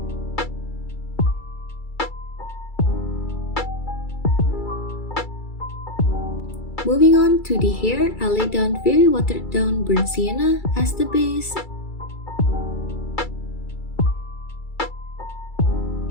Moving on to the hair, I laid down very watered down burnt sienna as the base.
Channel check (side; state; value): right; late; 2.3 ms